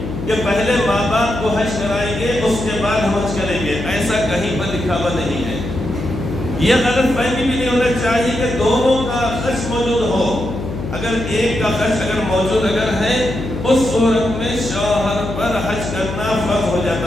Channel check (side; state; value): left; noise; hum, 7 dB below the sound